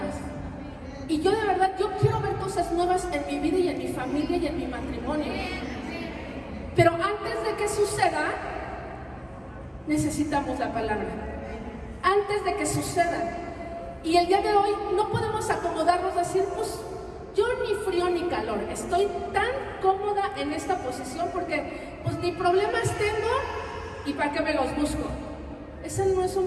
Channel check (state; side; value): identical; both; correlation 1.00